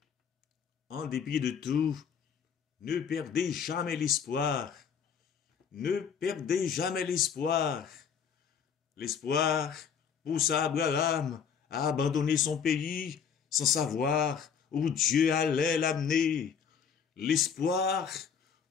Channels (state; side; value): quieter; right; 7.1 dB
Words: en dépit de tout, ne perdez jamais l'espoir. Ne perdez jamais l'espoir. L'espoir poussa Abraham à abandonner son pays sans savoir où Dieu allait l'amener. L'espoir